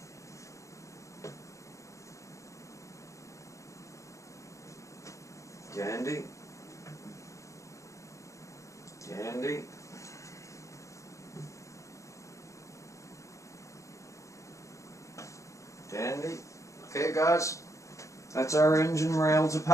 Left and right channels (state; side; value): late; right; 0.15 ms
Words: Dandy. Dandy. Dandy. Okay guys, that's our engine rails